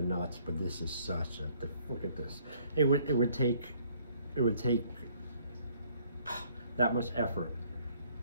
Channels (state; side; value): inverted; both; correlation -0.62